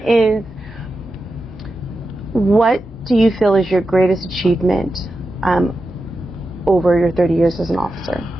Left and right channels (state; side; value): normal; both; correlation 0.90